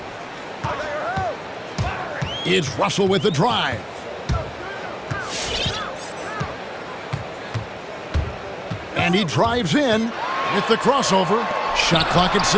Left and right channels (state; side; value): identical; both; correlation 1.00